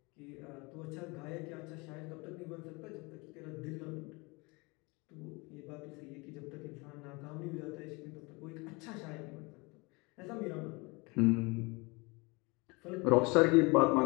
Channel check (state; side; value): quieter; right; 26.8 dB